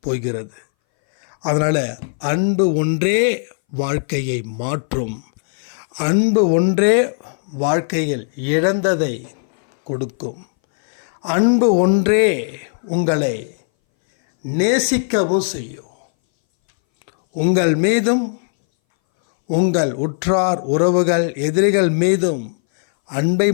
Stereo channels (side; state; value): right; silent; 62 dB below the other